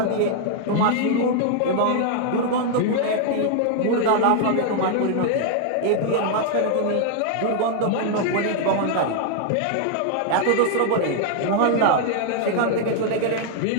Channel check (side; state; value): both; different; correlation 0.00